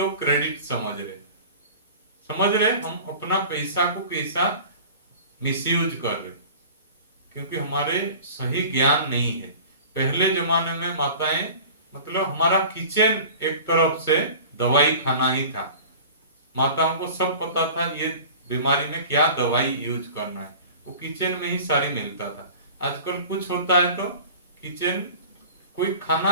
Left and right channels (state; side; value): inverted; both; correlation -0.40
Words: क्रेडिट समझ रहे। हम अपना पैसा को कैसा मिसयूज कर रहे, क्योंकि हमारे सही ज्ञान नहीं है। पहले जमाने में माताएं, मतलब हमारा किचन एक तरफ से दवाई खाना ही था, माताओं को सब पता था ये बीमारी में क्या दवाई यूज करना है, वो किचन में ही सारी मिलता था। आजकल कुछ होता है तो किचन, कोई